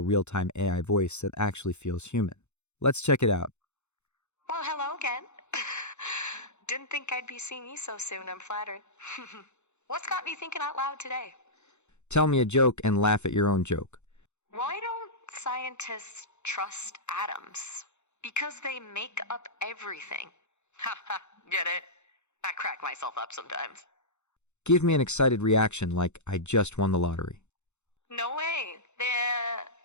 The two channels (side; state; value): right; late; 0.82 ms